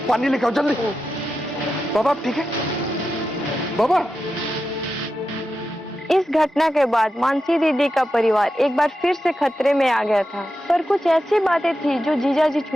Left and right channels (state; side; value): normal; both; correlation 0.90